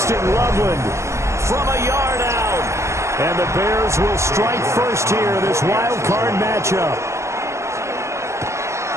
Loveland from a yard out. And the Bears will strike first here in this wild card matchup.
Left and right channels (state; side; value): late; left; 0.14 ms